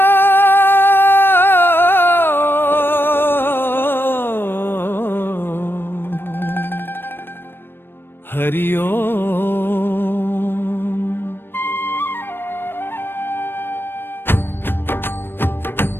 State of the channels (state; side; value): late; right; 0.10 ms